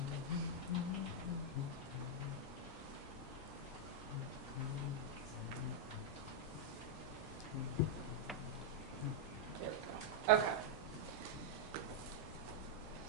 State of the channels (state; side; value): normal; both; correlation -0.03